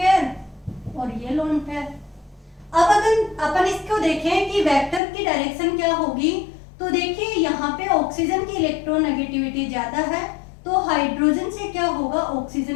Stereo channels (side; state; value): right; drops out; at 5.0 s